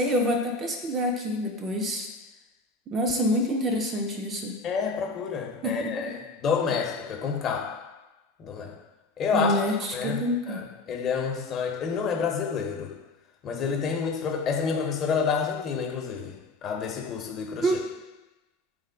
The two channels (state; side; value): quieter; right; 3.0 dB